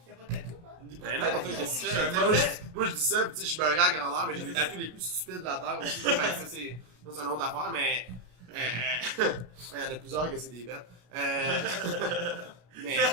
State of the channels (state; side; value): late; left; 33 ms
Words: t'as pas de tatou, hein? Ben non, toi, qu'est-ce que tu fais? Tu sais, moi, je dis ça, pis tu sais, je suis beurré à grandeur, mais j'ai les tatous les plus stupides de la Terre aussi. Fait que ça, c'est une autre affaire, mais. Il y en a plusieurs que c'est des bêtes. Mais.